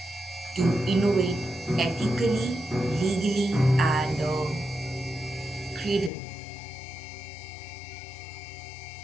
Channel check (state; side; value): drops out; right; at 6.1 s